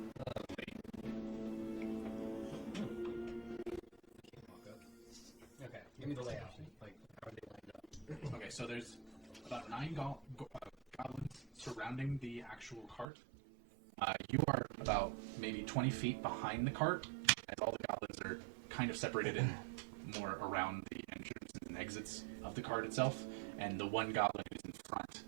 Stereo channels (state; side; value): drops out; left; at 13.1 s